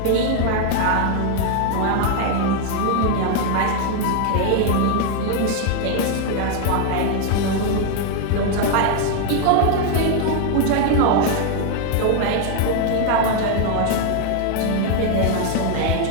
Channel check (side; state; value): both; different; correlation 0.00